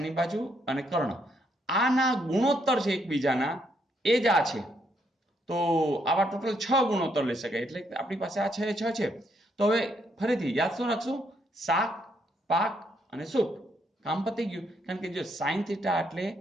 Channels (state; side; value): normal; both; correlation 0.74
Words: બાજુ અને કર્ણ. આના ગુણોત્તર છે એકબીજાના, એ જ આ છે. તો આવા ટોટલ 6 ગુણોત્તર લઈ શકાય. એટલે આપણી પાસે આ 6 એ 6 છે. તો હવે ફરીથી યાદ શું રાખશું? શાક, પાક અને સૂપ. કામ પતી ગયું. કારણ કે જો સાઇન થીટા એટલે